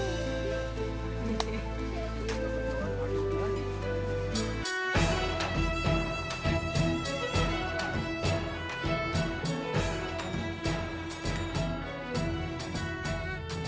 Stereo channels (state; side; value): identical; both; correlation 1.00